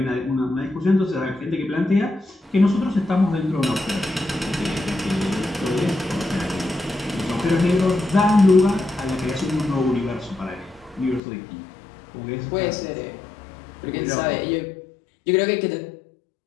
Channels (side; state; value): right; drops out; at 11.2 s